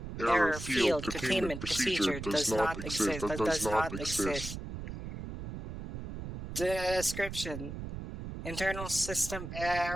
Error field containment procedure does not exist. Description: Internal system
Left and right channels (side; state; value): right; noise; rumble, 8 dB below the sound